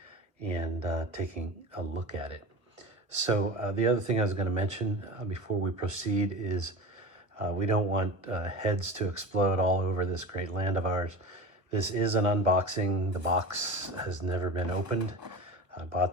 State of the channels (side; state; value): left; late; 1.0 ms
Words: and taking a look at it. So the other thing I was going to mention before we proceed is we don't want heads to explode all over this great land of ours. This is an unboxing. The box has never been opened. I bought